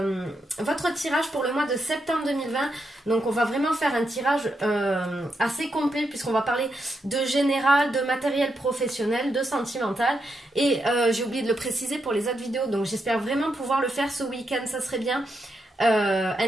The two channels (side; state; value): both; normal; correlation 0.83